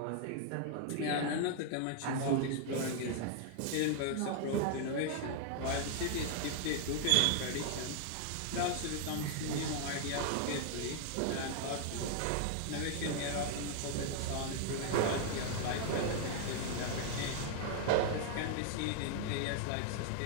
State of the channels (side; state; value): both; different; correlation 0.00